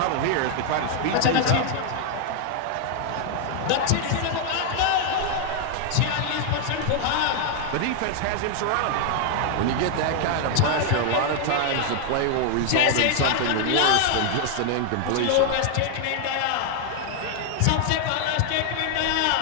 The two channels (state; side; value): different; both; correlation 0.00